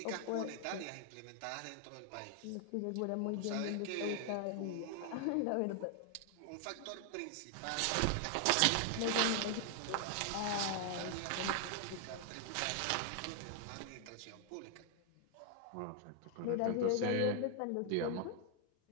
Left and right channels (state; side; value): different; both; correlation 0.00